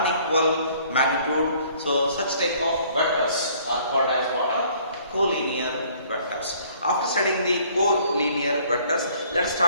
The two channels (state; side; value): inverted; both; correlation -0.59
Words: magnitude. So such type of vectors are called as what? Collinear vectors. After studying the collinear vectors, let us